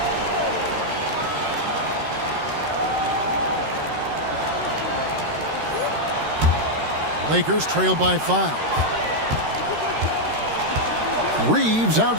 Lakers trail by 5. Reeves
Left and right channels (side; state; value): left; late; 13 ms